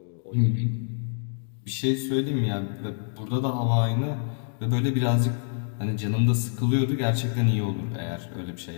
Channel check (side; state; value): right; silent; digital silence